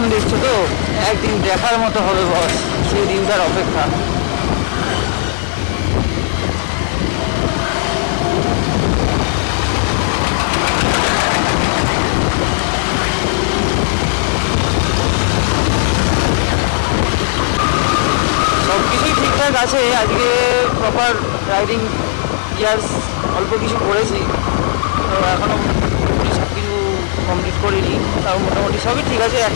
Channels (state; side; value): silent; right; 69 dB below the other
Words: দেখছো তো, একদিন দেখার মতো হবে বস, সেই দিনটার অপেক্ষা। সব কিছুই ঠিকঠাক আছে, আজকে প্রপার রাইডিং গিয়ার্স অল্প কিছু করেছি, তো এখনও সব কিছু কমপ্লিট করিনি, তাও মোটামুটি সবই ঠিক আছে।